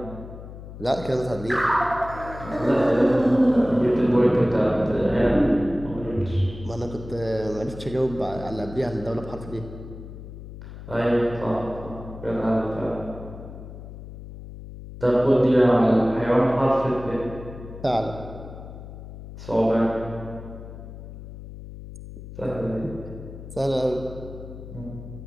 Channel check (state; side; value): noise; left; hum, 13 dB below the sound